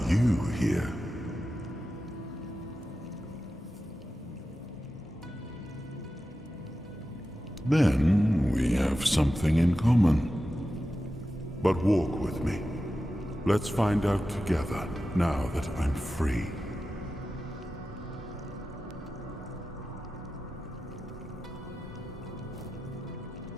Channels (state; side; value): normal; both; correlation 0.93